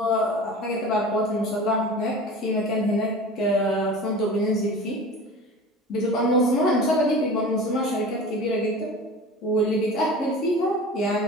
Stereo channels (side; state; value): both; normal; correlation 0.36